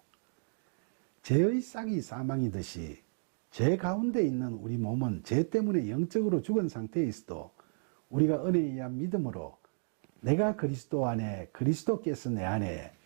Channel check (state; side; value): silent; left; digital silence